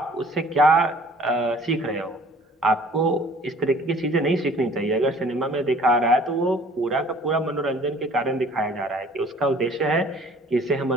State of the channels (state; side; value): normal; both; correlation 0.52